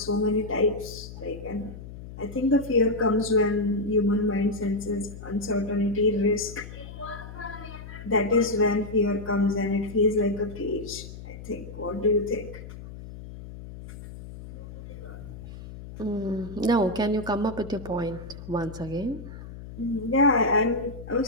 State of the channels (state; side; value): noise; left; hum, 13 dB below the sound